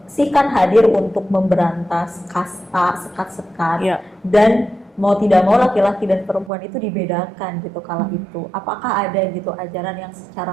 Sikh kan hadir untuk memberantas kasta, sekat-sekat, dan mau tidak mau laki-laki dan perempuan itu dibedakan gitu kala itu. Apakah ada gitu ajaran yang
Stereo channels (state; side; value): drops out; left; at 6.5 s